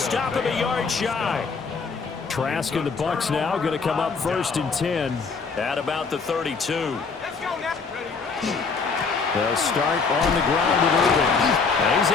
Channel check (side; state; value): right; quieter; 4.9 dB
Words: him a yard shy. Trask and the Bucs now going to come up 1st and 10 at about the 32. They'll start on the ground with Irving. And he's